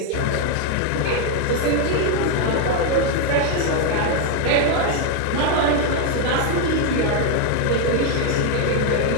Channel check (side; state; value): both; different; correlation 0.01